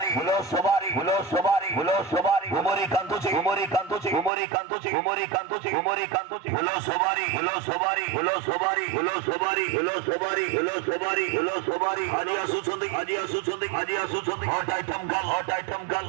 ফুল সবারি ফুল সবারি ফুল সবারি গুমরি কান্তুচি গুমরি কান্তুচি গুমরি কান্তুচি গুমরি কান্তুচি গুমরি কান্তুচি ফুল সবারি ফুল সবারি ফুল সবারি ফুল সবারি ফুল সবারি ফুল সবারি ফুল সবারি আজি আসুছন্দি আজি আসুছন্দি আজি আসুছন্দি হট আইটেম গাল হট আইটেম গাল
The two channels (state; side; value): drops out; left; at 4.3 s